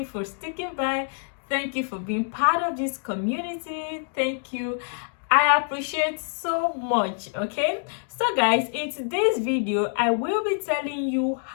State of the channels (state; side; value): silent; right; digital silence